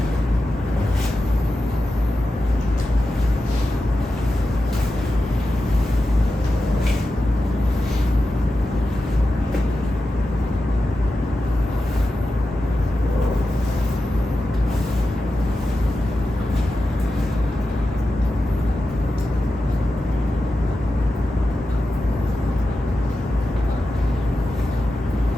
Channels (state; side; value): normal; both; correlation 0.91